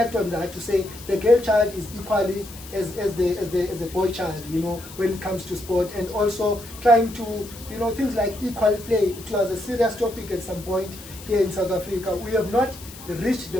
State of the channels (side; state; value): left; noise; hiss, 16 dB below the sound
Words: on that, to say the girl child is equally as the boy child, you know, when it comes to sport. And also trying to, you know, things like equal play. It was a serious topic at some point here in South Africa. We have not reached the